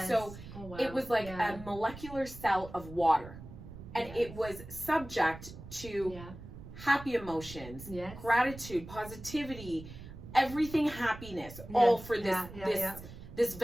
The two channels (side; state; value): right; noise; rumble, 14 dB below the sound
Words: So oh, wow. it was like yeah. a molecular cell of water, and Yes. it was subject to yeah. happy emotions, Yes. gratitude, positivity, everything happiness, all for this this